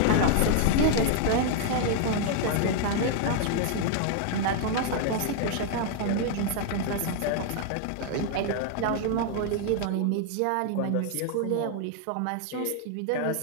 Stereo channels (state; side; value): different; both; correlation 0.00